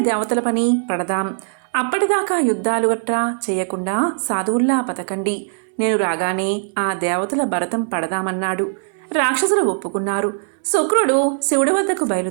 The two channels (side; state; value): left; silent; 66 dB below the other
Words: దేవతల పని పడదాం. అప్పటిదాకా యుద్ధాలు గట్రా చేయకుండా సాధువుల్లా బతకండి. నేను రాగానే ఆ దేవతల భరతం పడదామన్నాడు. రాక్షసులు ఒప్పుకున్నారు. శుక్రుడు శివుడి వద్దకు